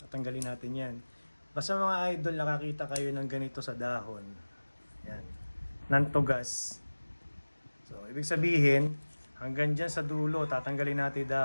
natin yan. Basta mga idol, nakakita kayo ng ganito sa dahon. Yan. Nantugas. So, ibig sabihin, hanggang dyan sa dulo, tatanggalin natin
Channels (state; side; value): inverted; both; correlation -1.00